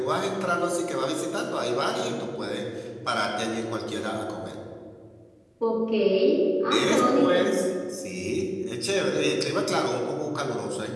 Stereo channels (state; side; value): identical; both; correlation 1.00